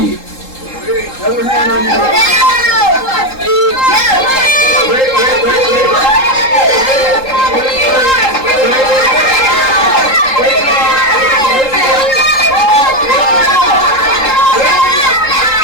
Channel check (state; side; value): late; right; 3.8 ms